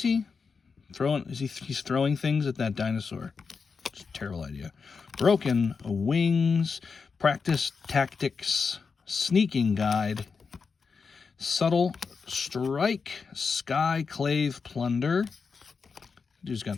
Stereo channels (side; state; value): right; quieter; 5.2 dB